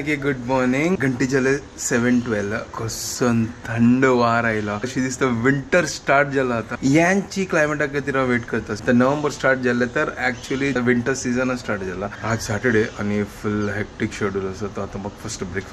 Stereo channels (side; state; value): both; identical; correlation 1.00